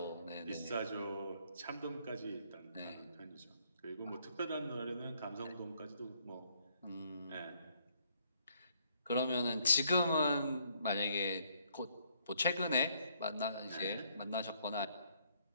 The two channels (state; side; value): inverted; both; correlation -0.68